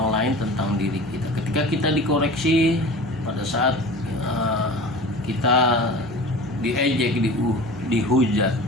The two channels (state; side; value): normal; both; correlation 0.37